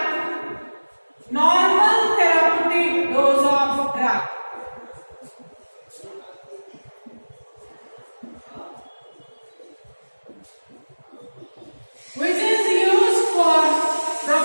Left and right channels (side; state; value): both; inverted; correlation -1.00